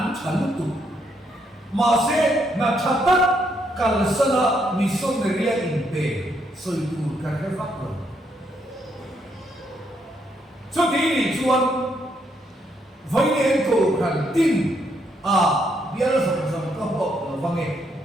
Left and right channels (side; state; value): both; normal; correlation 0.75